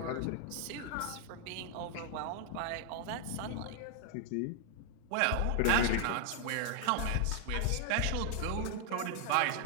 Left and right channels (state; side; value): different; both; correlation 0.00